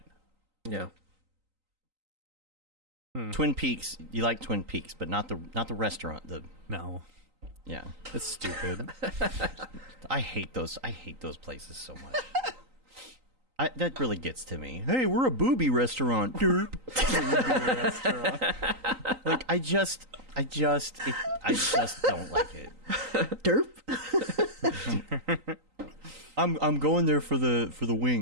Yeah. Twin Peaks. You like Twin Peaks, but not the restaurant. No. Yeah. It's stupid. I hate those places so much. That really gets to me. Hey, we're a booby restaurant. Derp. Like I just don't like it. Derp? I'm going there for the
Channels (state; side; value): late; left; 3.9 ms